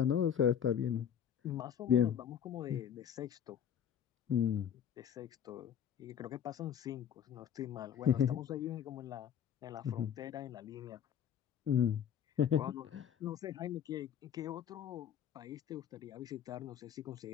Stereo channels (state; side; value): quieter; right; 8.9 dB